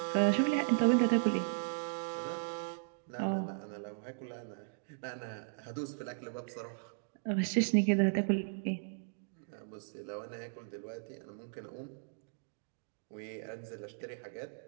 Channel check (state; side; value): silent; left; digital silence